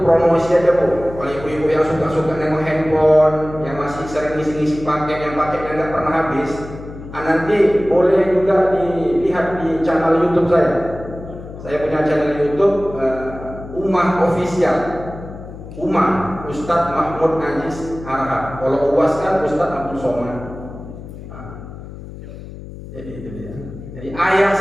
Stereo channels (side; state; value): left; noise; hum, 13 dB below the sound